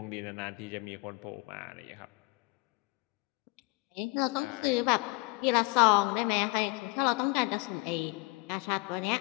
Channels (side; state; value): right; quieter; 26.0 dB